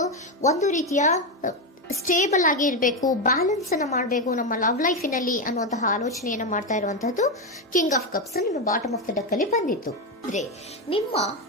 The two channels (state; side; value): normal; both; correlation 0.10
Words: ಒಂದು ರೀತಿಯ ಸ್ಟೇಬಲ್ ಆಗಿ ಇರಬೇಕು, ಬ್ಯಾಲೆನ್ಸ್ ಅನ್ನ ಮಾಡಬೇಕು ನಮ್ಮ ಲವ್ ಲೈಫಿನಲ್ಲಿ ಅನ್ನುವಂತಹ ಆಲೋಚನೆಯನ್ನ ಮಾಡ್ತಾ ಇರುವಂತಹದ್ದು ಕಿಂಗ್ ಆಫ್ ಕಪ್ಸ್ ನಿಮ್ಮ ಬಾಟಮ್ ಆಫ್ ದ ಡಕ್ ಅಲ್ಲಿ ಬಂದಿತ್ತು. ಅಂದ್ರೆ ನಿಮ್ಮ